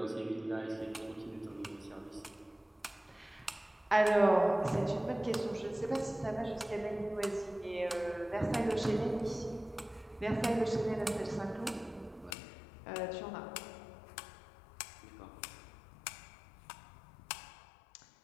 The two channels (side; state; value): right; drops out; at 12.4 s